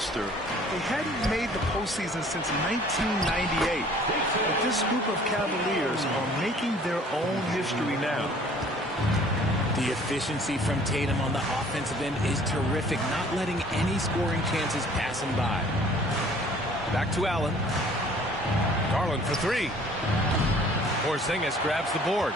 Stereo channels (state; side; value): normal; both; correlation 0.54